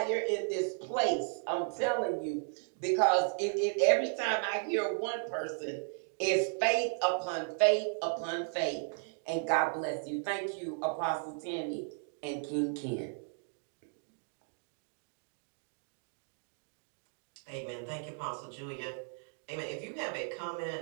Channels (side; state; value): left; silent; 55 dB below the other